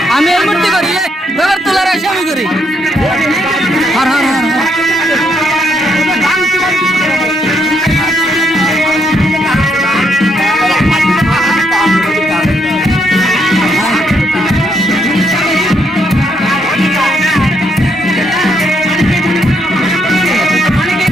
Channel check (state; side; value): normal; both; correlation 0.75